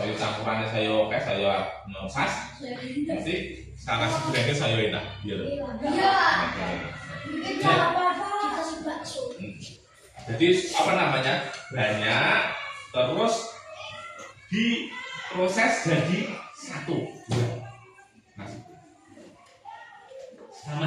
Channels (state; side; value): identical; both; correlation 1.00